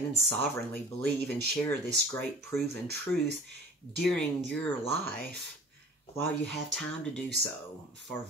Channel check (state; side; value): normal; both; correlation 0.43